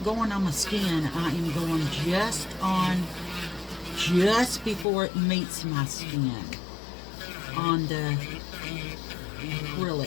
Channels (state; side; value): drops out; right; at 4.9 s